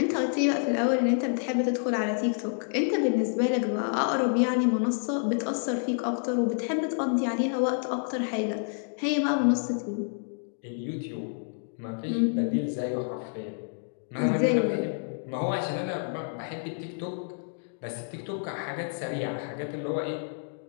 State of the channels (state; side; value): silent; right; digital silence